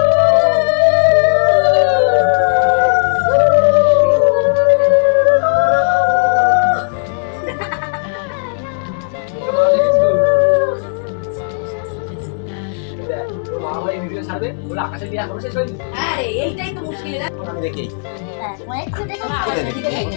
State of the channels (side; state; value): right; silent; digital silence